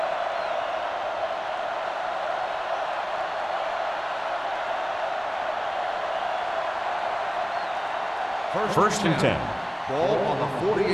First and 10. Ball on the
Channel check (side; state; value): both; identical; correlation 1.00